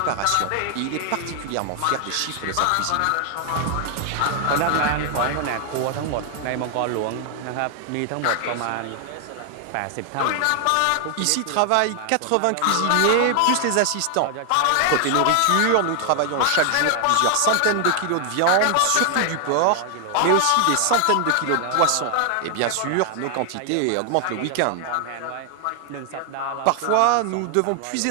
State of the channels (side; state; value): both; different; correlation 0.00